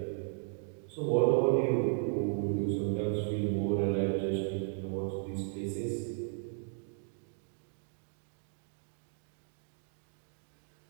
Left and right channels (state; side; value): silent; left; 54 dB below the other